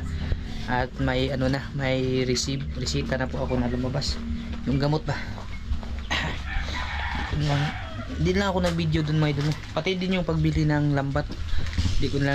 at may may resita na po ako na lumabas yung gamot ba. Hindi lang ako nag-video dun mga idol, pati din yung pagbili ng lambat hindi ko na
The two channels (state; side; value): identical; both; correlation 1.00